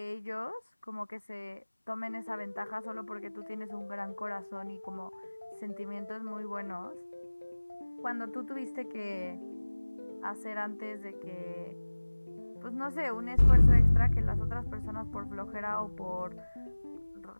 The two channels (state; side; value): inverted; both; correlation -1.00